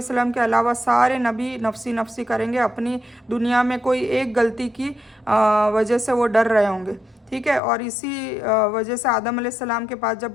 वसल्लम के अलावा सारे नबी नफसी नफसी करेंगे। अपनी दुनिया में कोई एक गलती की वजह से वो डर रहे होंगे, ठीक है। और इसी वजह से आदम अलैहिस्सलाम के पास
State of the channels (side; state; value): right; drops out; at 7.6 s